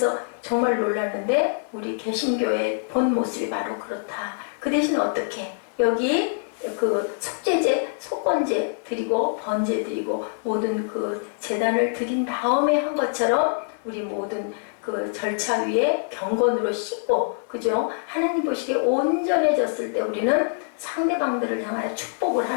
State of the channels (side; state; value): right; silent; digital silence